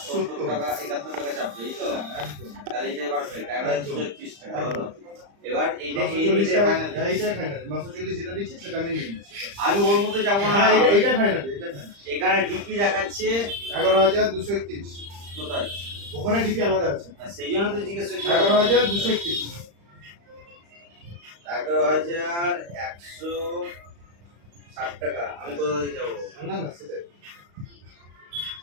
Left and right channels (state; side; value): late; left; 35 ms